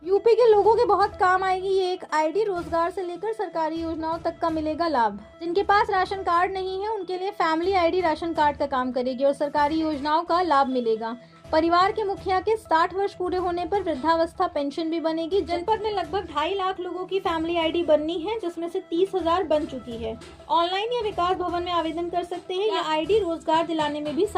यूपी के लोगों के बहुत काम आएगी ये एक आईडी। रोजगार से लेकर सरकारी योजनाओं तक का मिलेगा लाभ। जिनके पास राशन कार्ड नहीं है उनके लिए फैमिली आईडी राशन कार्ड का काम करेगी और सरकारी योजनाओं का लाभ मिलेगा। परिवार के मुखिया के 60 वर्ष पूरे होने पर वृद्धावस्था पेंशन भी बनेगी। जनपद में लगभग 2.5 लाख लोगों की फैमिली आईडी बननी है, जिसमें से 30,000 बन चुकी है। ऑनलाइन या विकास भवन में आवेदन कर सकते हैं। यह आईडी रोजगार दिलाने में भी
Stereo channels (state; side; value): identical; both; correlation 1.00